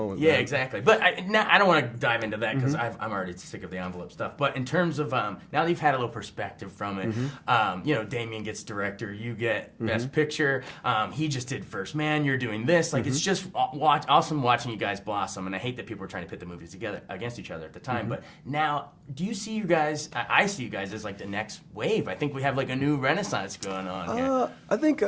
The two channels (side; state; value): both; identical; correlation 1.00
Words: Yeah, exactly. But I don't want to dive into that because I'm already sick of the envelope stuff. But in terms of, now that you've had a little perspective from it, you know, Damien gets director, you get best picture. He just did First Man, you're doing this. Like, it's just awesome watching you guys blossom. And I hate that people were trying to pit the movies together against each other at the time. But now, do you see you guys, I see you guys as like the next wave. I think we have like a new renaissance going on here. I